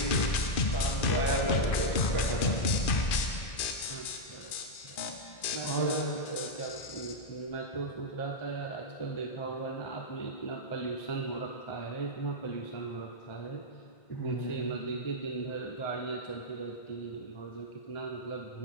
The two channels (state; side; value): late; right; 2.4 ms